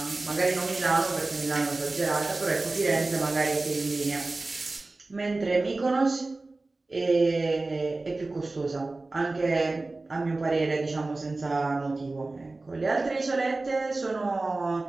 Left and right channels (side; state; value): left; quieter; 3.2 dB